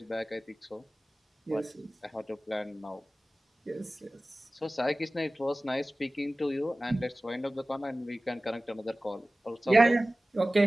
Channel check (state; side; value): normal; both; correlation 0.97